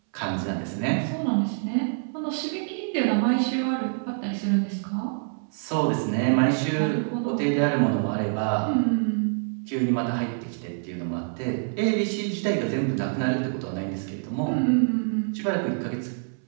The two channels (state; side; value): silent; left; 61 dB below the other